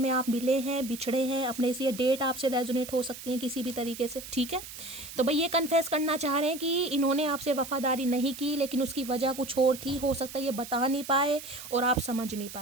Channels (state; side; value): noise; right; hiss, 12 dB below the sound